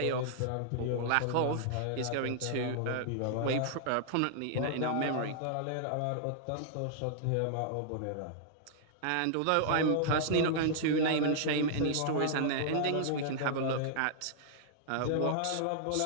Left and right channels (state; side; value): different; both; correlation -0.01